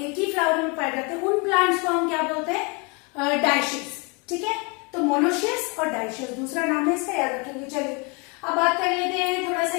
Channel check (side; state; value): right; quieter; 31.0 dB